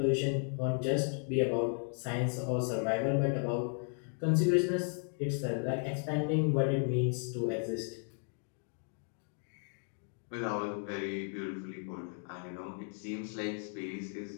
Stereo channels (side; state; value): right; silent; 55 dB below the other